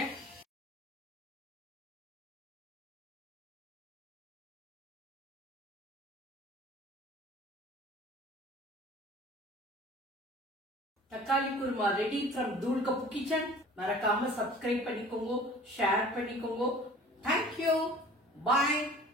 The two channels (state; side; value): normal; both; correlation 0.46